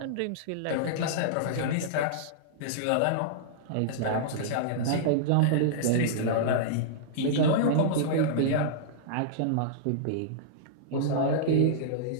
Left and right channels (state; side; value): different; both; correlation -0.03